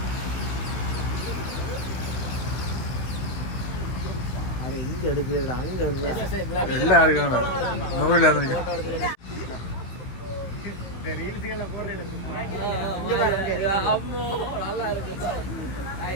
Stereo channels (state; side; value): late; right; 15 ms